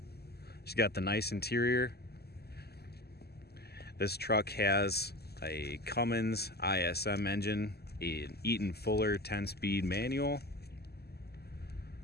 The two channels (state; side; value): late; right; 0.46 ms